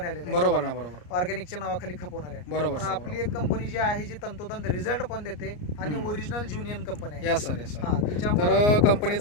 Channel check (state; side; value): late; right; 34 ms